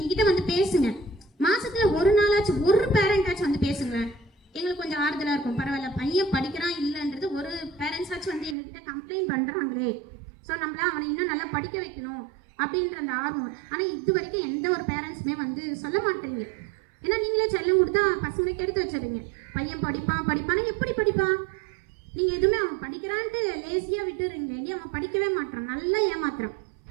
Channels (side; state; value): left; drops out; at 8.6 s